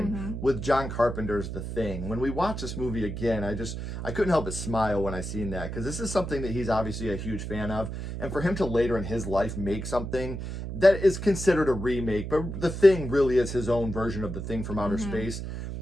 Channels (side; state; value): right; noise; hum, 6 dB below the sound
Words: with John Carpenter's The Thing. When we watch this movie again, I couldn't help but smile when I seen that, because this is something that he's obviously a huge fan of, and for him to later in his life make something that is considered a remake, but The Thing really is his own version of The Thing from outer space.